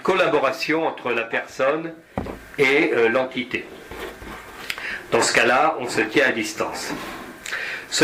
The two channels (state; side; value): identical; both; correlation 1.00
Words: entre la personne et l'entité. Dans ce cas-là, on se tient à distance.